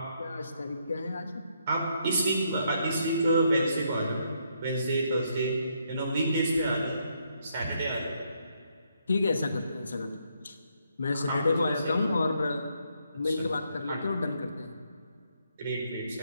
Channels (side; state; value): both; inverted; correlation -0.74